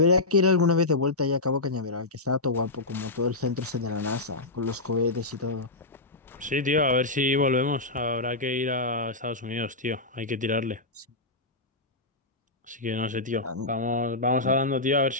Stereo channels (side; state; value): right; quieter; 3.1 dB